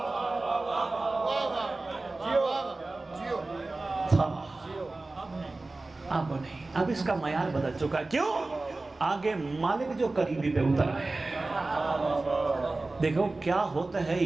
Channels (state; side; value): quieter; left; 3.2 dB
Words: تھا اب نہیں، اب اس کا معیار بدل چکا۔ کیوں؟ آگے مالک جو قریبی پہ اتر ہے۔ دیکھو کیا ہوتا ہے